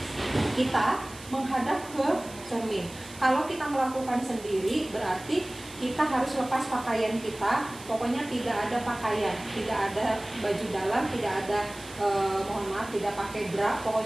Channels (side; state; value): right; noise; hiss, 18 dB below the sound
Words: kita menghadap ke cermin. Kalau kita melakukan sendiri berarti kita harus lepas pakaian kita, pokoknya tidak ada pakaian, tidak ada baju dalam, tidak ada mohon maaf, tidak pakai bra,